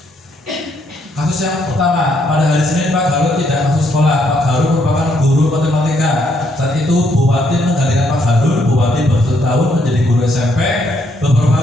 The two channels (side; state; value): both; normal; correlation 0.73